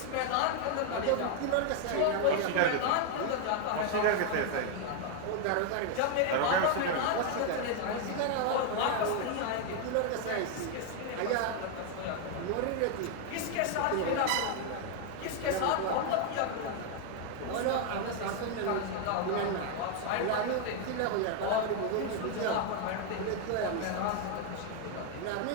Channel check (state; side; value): different; both; correlation 0.01